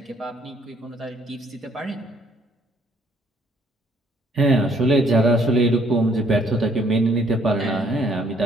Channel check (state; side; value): normal; both; correlation 0.64